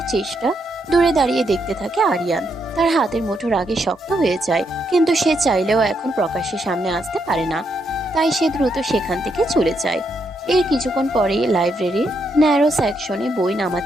চেষ্টা দূরে দাঁড়িয়ে দেখতে থাকে আরিয়ান। তার হাতের মুঠো রাগে শক্ত হয়ে যায়, কিন্তু সে চাইলেও এখন প্রকাশ্যে সামনে আসতে পারে না, তাই সে দ্রুত সেখান থেকে চলে যায়। এর কিছুক্ষণ পরেই লাইব্রেরির ন্যারো সেকশনে বই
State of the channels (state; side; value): normal; both; correlation 0.78